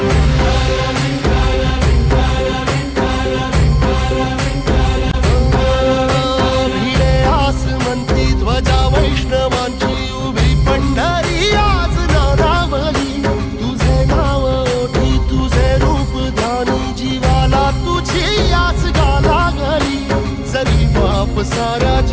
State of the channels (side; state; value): both; identical; correlation 1.00